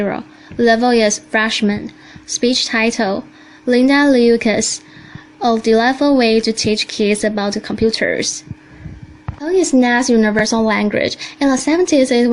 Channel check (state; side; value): identical; both; correlation 1.00